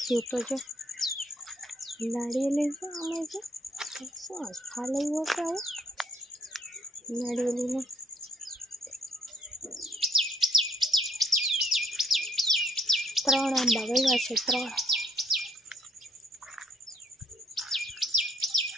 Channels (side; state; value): both; normal; correlation 0.68